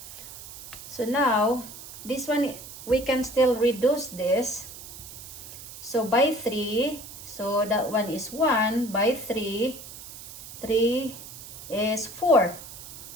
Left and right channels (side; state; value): right; noise; hiss, 14 dB below the sound